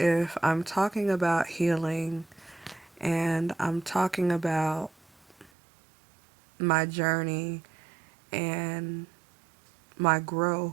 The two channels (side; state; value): left; drops out; at 5.5 s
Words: I'm talking about healing and I'm talking about my journey and my growth,